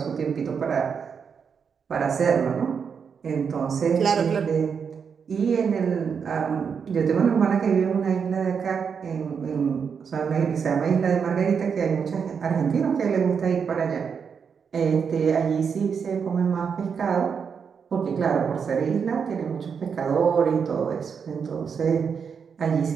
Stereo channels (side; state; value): left; quieter; 6.5 dB